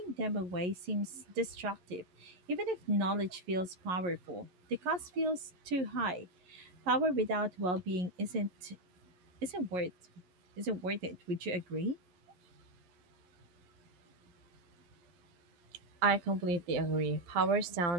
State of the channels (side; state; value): left; late; 11 ms